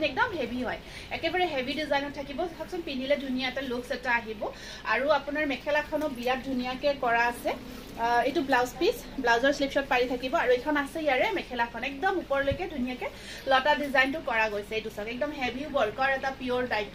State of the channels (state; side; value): identical; both; correlation 1.00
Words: একদম হেভি হয় একেবাৰে হেভি ডিজাইনত থাকিব চাওকচোন পিন্ধিলে ধুনীয়া এটা লুকস এটা আহিব আৰু আপোনাৰ মেখেলাখনো বিৰাট ধুনীয়াকৈ কৰা আছে এইটো ব্লাউজ পিস ব্লাউজৰ স্লিপ শট পাৰি থাকিব আৰু এখন আছে ইয়াৰে মেখেলাখন একদম ওপৰলৈকে ধুনীয়াকৈ লতা ডিজাইনটো কৰা গৈছে এইটো চাওক একদম হেভি ওয়াৰ্কৰ এটা পিওৰ